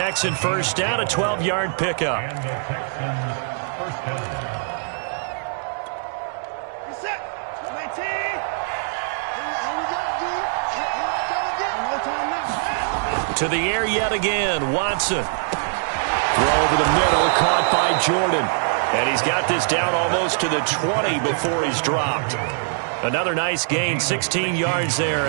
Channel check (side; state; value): left; silent; digital silence